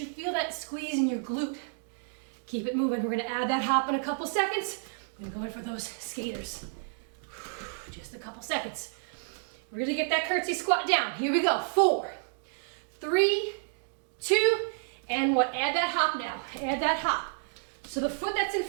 feel that squeeze in your glute. Keep it moving. We're gonna add that hop in a couple seconds. We're gonna go in for those skaters. Just a couple seconds. Really get that curtsy squat down. Here we go. 4, 3, 2, and 1. Add that hop now. Add that hop. So the foot that's in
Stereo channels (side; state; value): left; silent; digital silence